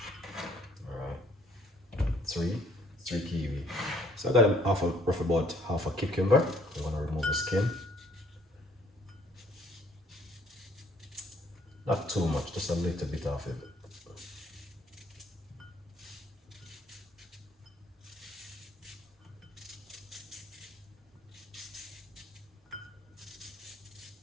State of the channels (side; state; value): both; normal; correlation 0.62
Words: Three kiwi. So I got roughly about half a cucumber. I'm gonna remove the skin. Not too much, just a little bit of it.